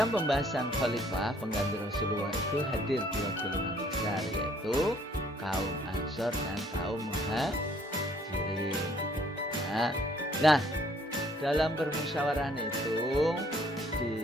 pembahasan khalifah pengganti Rasulullah itu hadir dua golongan besar, yaitu kaum Ansor dan kaum Muhajirin. Nah, dalam permusyawarah itu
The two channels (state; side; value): normal; both; correlation 0.62